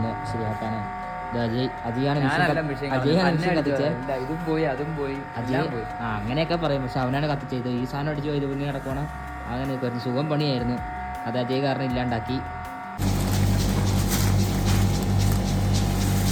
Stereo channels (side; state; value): both; identical; correlation 1.00